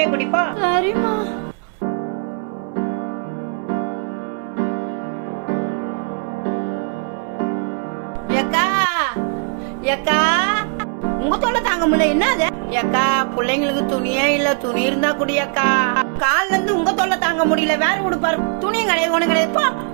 குடிப்போ. சரிம்மா. ஏக்கா ஏக்கா உங்க தொல்லை தாங்க முடியல. என்னது ஏக்கா? பிள்ளைங்களுக்கு துணியே இல்ல, துணி இருந்தா குடியக்கா. கால்ல இருந்து உங்க தொல்லை தாங்க முடியல, வேற உடுப்பாரு. துணியும் கிடையாது, ஒண்ணு கிடையாதுப்பா.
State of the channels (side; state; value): left; quieter; 39.7 dB